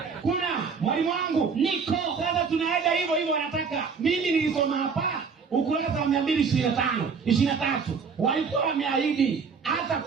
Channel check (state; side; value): quieter; left; 5.6 dB